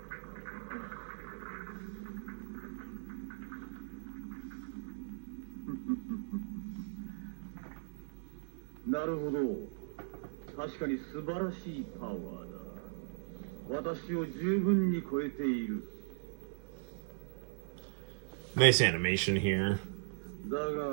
Nice animation here.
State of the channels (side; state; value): left; silent; digital silence